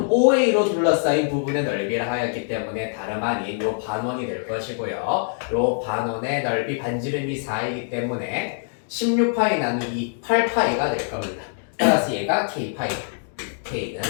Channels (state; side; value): silent; right; digital silence